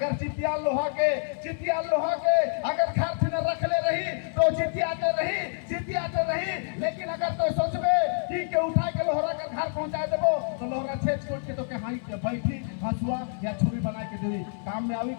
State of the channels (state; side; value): silent; right; digital silence